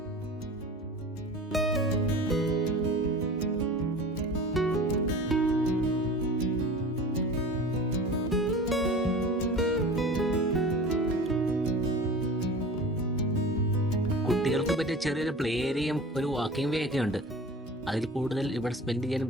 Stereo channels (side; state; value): both; normal; correlation 0.37